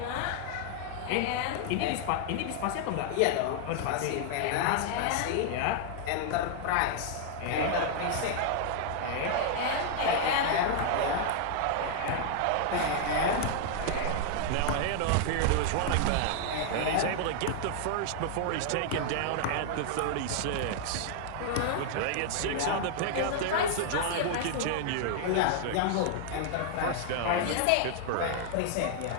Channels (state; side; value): different; both; correlation -0.01